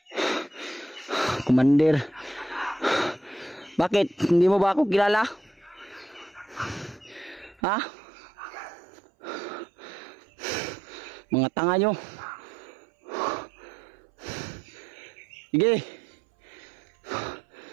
Commander. Bakit? Hindi mo ba ako kilala? Ha? Mga tanga nyo. Sige.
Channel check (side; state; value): left; drops out; at 7.6 s